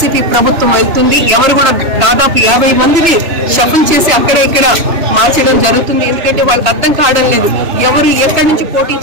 ప్రభుత్వం వెళ్తుంది. ఎవరు కూడా దాదాపు 50 మందిని షఫుల్ చేసి అక్కడ ఇక్కడ మార్చడం జరుగుతుంది. ఎందుకంటే వాళ్ళకి అర్థం కావడం లేదు ఎవరు ఎక్కడి నుంచి పోటీ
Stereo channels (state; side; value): late; left; 3.0 ms